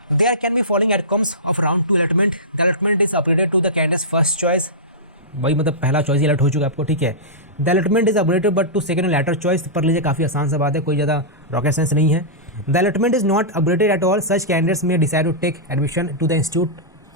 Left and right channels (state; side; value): normal; both; correlation -0.16